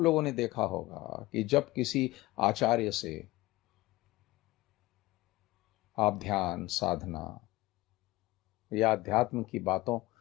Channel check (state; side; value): quieter; right; 19.2 dB